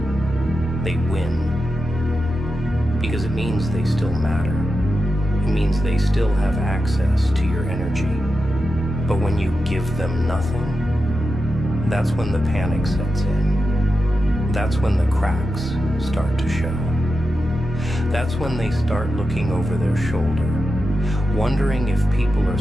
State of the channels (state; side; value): normal; both; correlation 0.90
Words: they win. Because it means they still matter. It means they still have access to your energy. But when you give them nothing, that's when the panic sets in. That's when the cracks start to show. That's when they start looking over their shoulder, wondering if people are